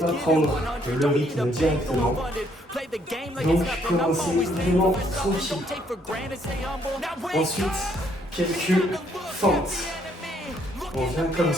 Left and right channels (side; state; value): both; normal; correlation 0.68